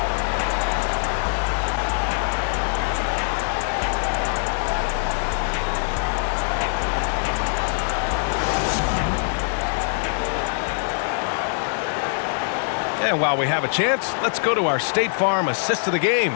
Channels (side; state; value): right; silent; 63 dB below the other